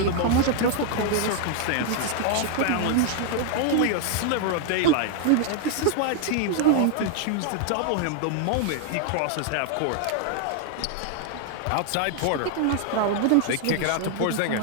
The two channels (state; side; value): different; both; correlation 0.00